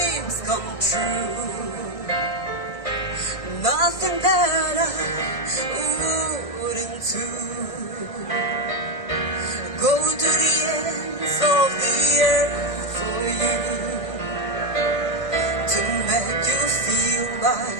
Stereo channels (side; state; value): right; late; 1.6 ms